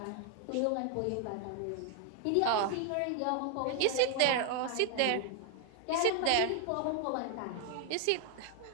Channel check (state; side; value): different; both; correlation 0.00